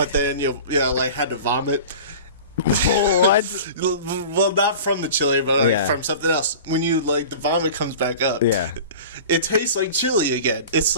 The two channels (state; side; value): inverted; both; correlation -0.38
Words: then like had to vomit? What? Well, not from the chili, but like from something else. When you like the vomit comes back up, it tastes like chili again. It's